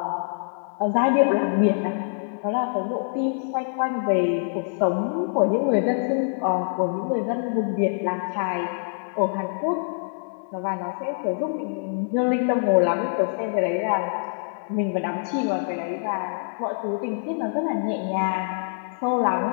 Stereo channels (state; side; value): silent; right; digital silence